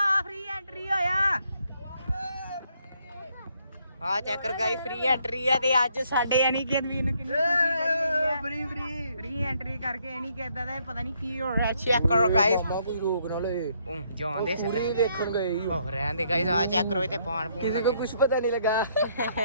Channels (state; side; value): inverted; both; correlation -0.71